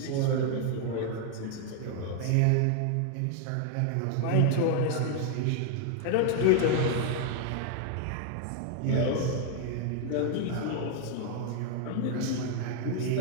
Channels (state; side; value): different; both; correlation 0.00